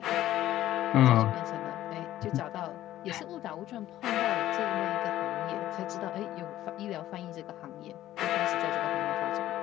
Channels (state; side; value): quieter; right; 13.7 dB